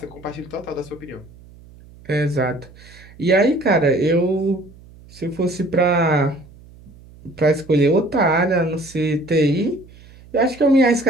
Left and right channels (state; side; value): noise; right; hum, 23 dB below the sound